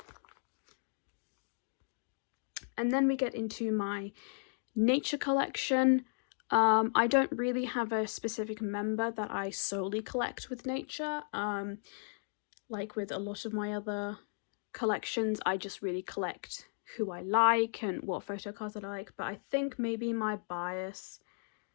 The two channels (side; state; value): right; silent; digital silence